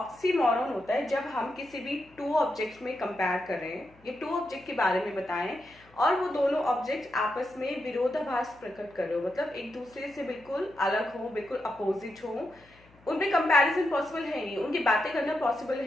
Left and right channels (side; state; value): left; noise; hum, 28 dB below the sound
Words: होता है जब हम किसी भी टू ऑब्जेक्ट्स में कंपेयर कर रहे हैं, ये टू ऑब्जेक्ट के बारे में बताएं, और वो दोनों ऑब्जेक्ट आपस में विरोधाभास प्रकट कर रहे हो, मतलब एक दूसरे से बिल्कुल अलग हो, बिल्कुल अपोजिट हो, उनमें कंपैरिजन पॉसिबल है नहीं, उनकी बातें करना पॉसिबल है